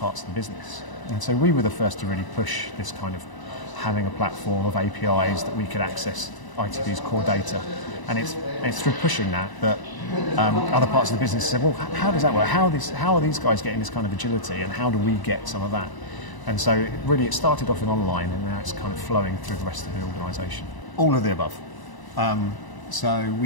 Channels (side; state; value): right; late; 1.0 ms